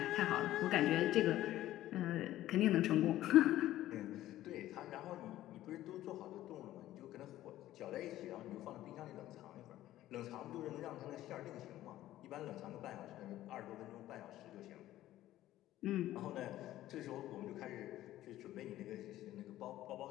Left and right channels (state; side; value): quieter; right; 14.3 dB